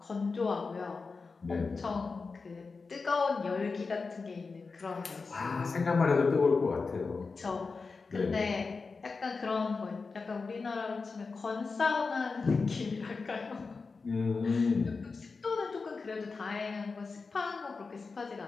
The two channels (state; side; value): quieter; right; 4.4 dB